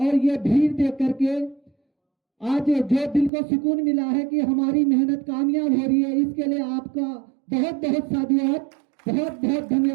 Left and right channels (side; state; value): left; drops out; at 3.3 s